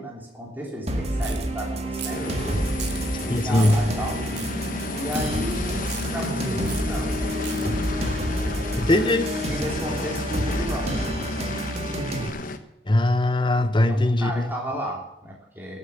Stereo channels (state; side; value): normal; both; correlation 0.73